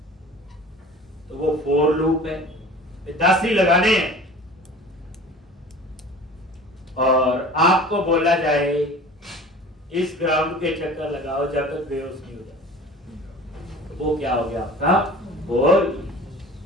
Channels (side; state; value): both; normal; correlation 0.41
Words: तो वो फॉर लूप है, 10 ही लगाने हैं। और आपको बोला जाए इस ग्राउंड के चक्कर लगाओ जब तक बेहोश नहीं हो जाए, तो वो क्या हो गया आपका फॉर।